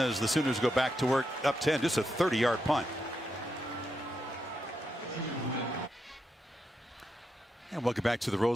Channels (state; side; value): normal; both; correlation 0.83